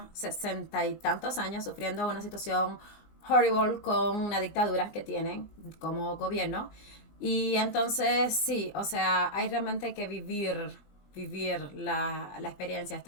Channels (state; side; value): late; right; 19 ms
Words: 60 y tantos años sufriendo una situación horrible con una dictadura que tienen como gobierno. Y entonces sí, o sea, hay realmente que vivir la experiencia,